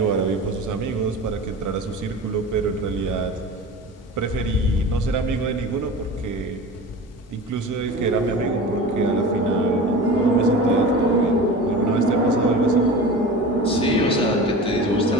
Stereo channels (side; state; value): both; normal; correlation 0.34